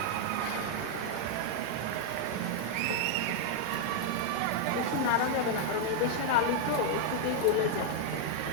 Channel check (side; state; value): both; different; correlation 0.00